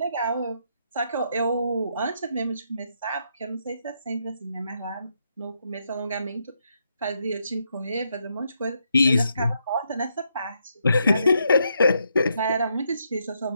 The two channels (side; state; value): both; inverted; correlation -0.78